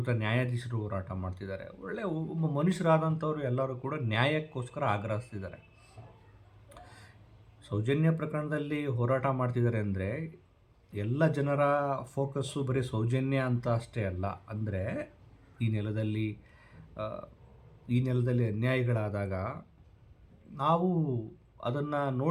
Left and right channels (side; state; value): both; identical; correlation 1.00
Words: ನ್ಯಾಯಾಧೀಶರು ಹೋರಾಟ ಮಾಡ್ತಿದ್ದಾರೆ. ಒಬ್ಬ ಮನುಷ್ಯರಾದಂಥವ್ರು ಎಲ್ಲರೂ ಕೂಡ ನ್ಯಾಯಕ್ಕೋಸ್ಕರ ಆಗ್ರಹಿಸ್ತಿದ್ದಾರೆ. ಸೌಜನ್ಯ ಪ್ರಕರಣದಲ್ಲಿ ಹೋರಾಟ ಮಾಡ್ತಿದ್ದಾರೆ ಅಂದರೆ, ಎಲ್ಲ ಜನರ ಫೋಕಸ್ಸು ಬರೀ ಸೌಜನ್ಯ ಅಂತ ಅಷ್ಟೇ ಅಲ್ಲ. ಅಂದರೆ ಈ ನೆಲದಲ್ಲಿ ಅನ್ಯಾಯಗಳಾದಾಗ ನಾವು ಅದನ್ನು